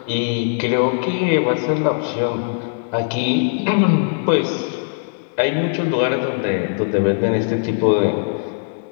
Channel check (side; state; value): right; silent; digital silence